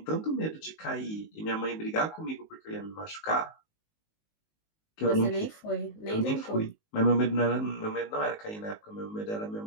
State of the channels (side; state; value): right; late; 19 ms